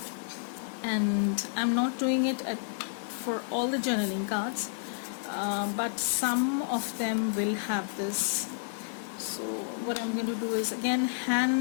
and I'm not doing it for all the journaling cards, but some of them will have this. So what I'm going to do is, again,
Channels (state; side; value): silent; right; digital silence